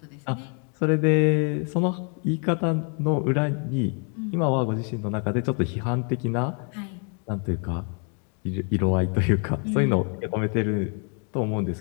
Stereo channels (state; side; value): quieter; right; 39.6 dB